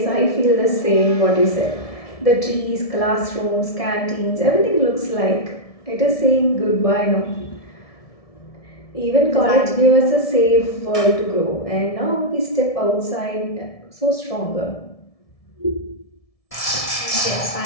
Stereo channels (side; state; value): right; late; 1.7 ms